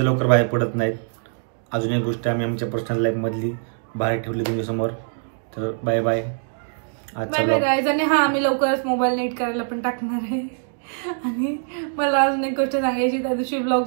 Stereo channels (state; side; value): silent; left; digital silence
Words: लवकर बाहेर पडत नाहीत. अजून एक गोष्ट आम्ही आमच्या पर्सनल लाईफमधली बाहेर ठेवली तुमच्यासमोर. तर बाय बाय. आजचा बाय बाय ब्लॉग गाईज. आणि हा आम्ही लवकरच मोबाईल नेट करायला पण टाकणार आहे. आणि मला अजून एक गोष्ट सांगायची, त्या दिवशी